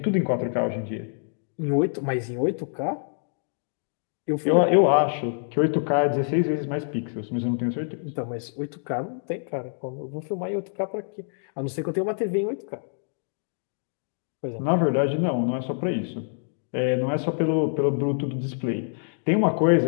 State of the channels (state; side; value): silent; right; digital silence